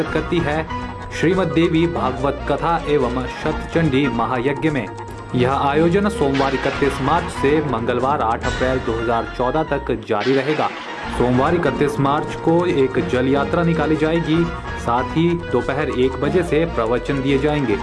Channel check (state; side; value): identical; both; correlation 1.00